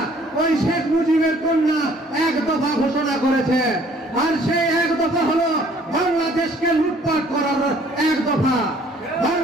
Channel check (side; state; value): both; normal; correlation 0.58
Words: ওই শেখ মুজিবের কন্যা 1 দফা ঘোষণা করেছে। আর সেই 1 দফা হলো বাংলাদেশকে লুটপাট করার 1 দফা।